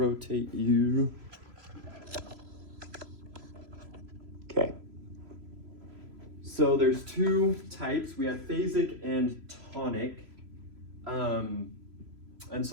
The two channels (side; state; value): left; late; 3.0 ms